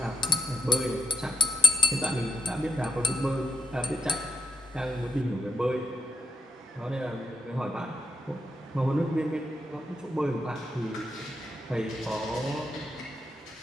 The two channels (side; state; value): both; normal; correlation 0.80